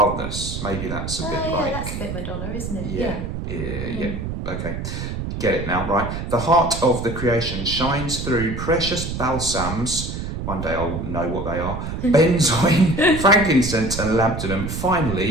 Maybe that's a bit like... Yeah, that's a bit Madonna, isn't it? Yeah. Okay. Get it now, right? The heart of the creation shines through precious balsams. One day I'll know what they are. Benzoin, frankincense and labdanum.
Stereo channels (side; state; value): right; noise; rumble, 5 dB below the sound